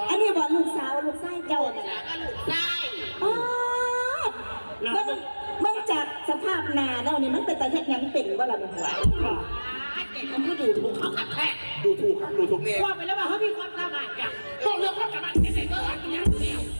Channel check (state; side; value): inverted; both; correlation -1.00